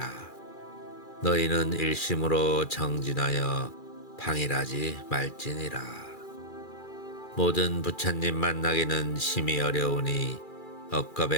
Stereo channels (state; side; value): late; right; 2.4 ms